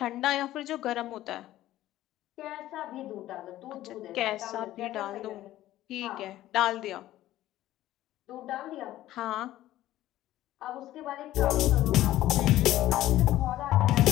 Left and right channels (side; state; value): right; quieter; 14.5 dB